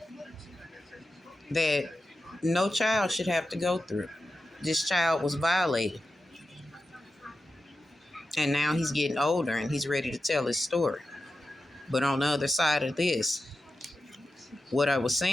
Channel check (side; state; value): both; normal; correlation 0.91